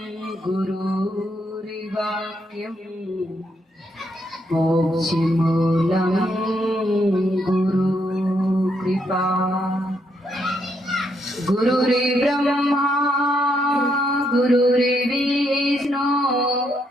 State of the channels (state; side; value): normal; both; correlation 0.76